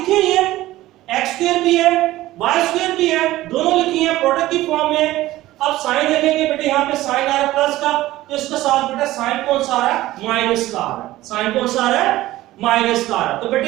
हुई है, x स्क्वायर भी है y स्क्वायर भी है, दोनों लिखी है प्रोडक्ट की फॉर्म में। अब साइन देखेंगे बेटे यहाँ पे साइन आ रहा है प्लस का तो इसके साथ बेटा साइन कौन सा आ रहा है माइनस का आ रहा है, साइन कौन सा आ रहा है माइनस का आ रहा है। तो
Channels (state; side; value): quieter; left; 16.3 dB